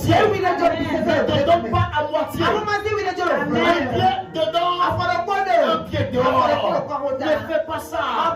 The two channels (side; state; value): both; identical; correlation 1.00